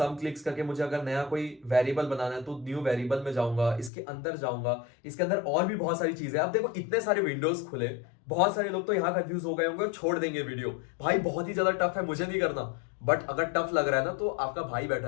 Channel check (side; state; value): right; drops out; at 3.9 s